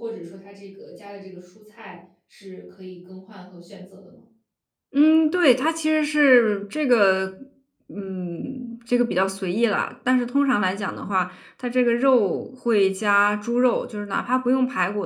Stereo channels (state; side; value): identical; both; correlation 1.00